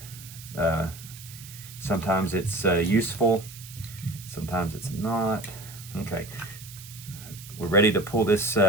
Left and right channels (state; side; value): noise; right; hiss, 16 dB below the sound